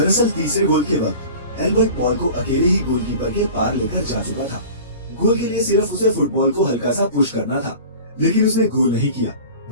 तीसरे गोल के वक्त एल्बर्ट बॉल को अकेले ही गोलकीपर के पार लेकर जा चुका था। गोल के लिए सिर्फ उसे फुटबॉल को हल्का सा पुश करना था, लेकिन उसने गोल नहीं किया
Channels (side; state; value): both; inverted; correlation -0.39